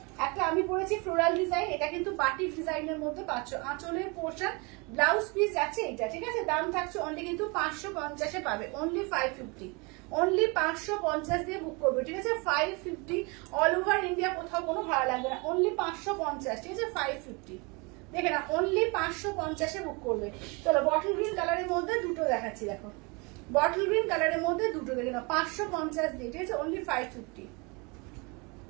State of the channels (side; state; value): left; quieter; 29.1 dB